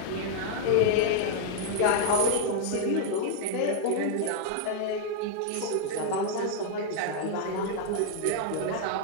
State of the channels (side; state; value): both; different; correlation -0.01